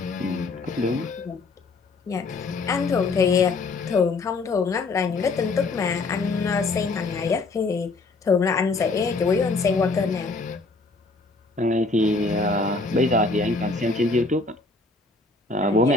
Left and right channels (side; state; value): right; quieter; 3.6 dB